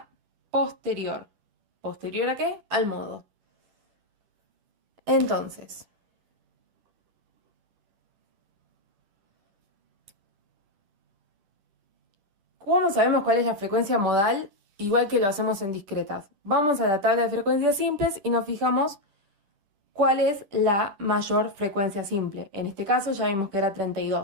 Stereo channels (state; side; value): late; left; 10 ms